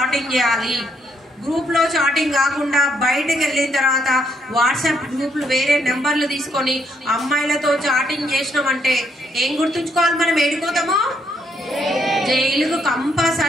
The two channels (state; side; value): normal; both; correlation 0.73